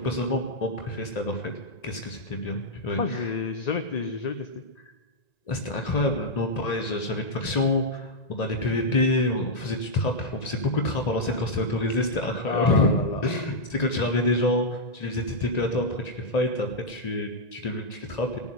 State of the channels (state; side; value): late; right; 1.9 ms